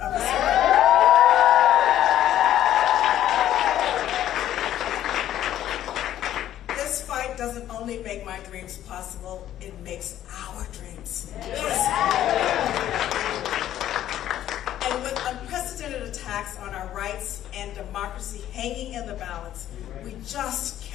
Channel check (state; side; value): quieter; right; 12.0 dB